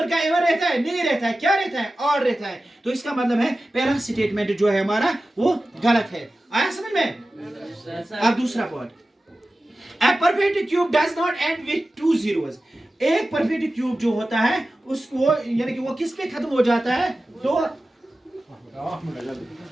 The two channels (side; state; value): both; normal; correlation 0.95